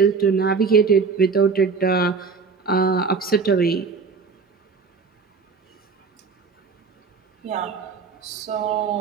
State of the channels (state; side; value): quieter; left; 5.1 dB